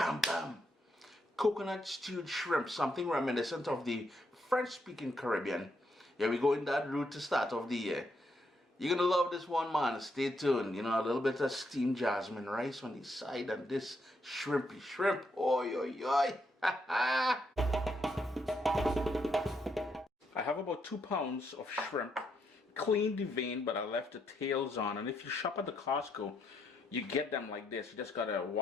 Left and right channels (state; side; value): normal; both; correlation 0.77